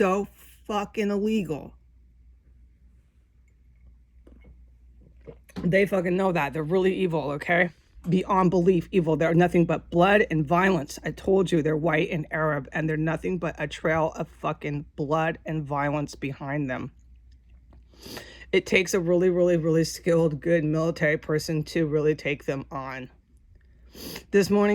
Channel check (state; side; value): identical; both; correlation 1.00